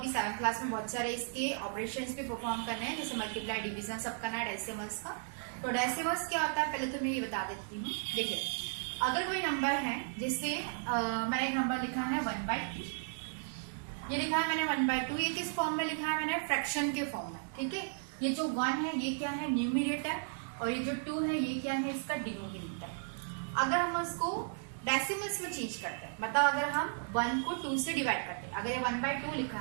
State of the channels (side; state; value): left; silent; digital silence